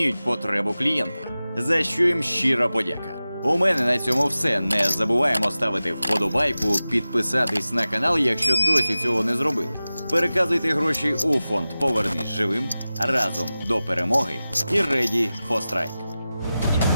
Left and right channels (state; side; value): inverted; both; correlation -0.96